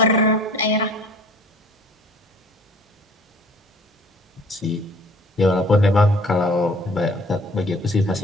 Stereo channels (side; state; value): both; normal; correlation 0.51